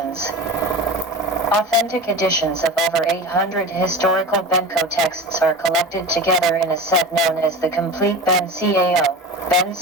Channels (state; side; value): normal; both; correlation 0.31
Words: Authentic editions of over 800 historical Benko texts are collected together in a set known as the Complete Ben Cao, Ben